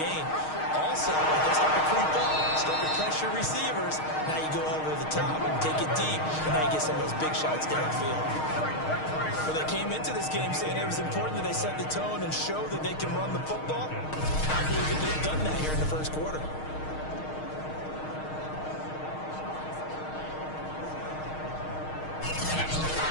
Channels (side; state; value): right; late; 6.4 ms